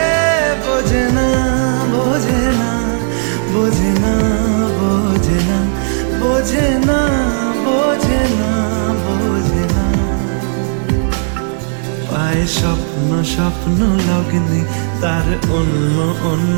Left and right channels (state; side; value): silent; left; digital silence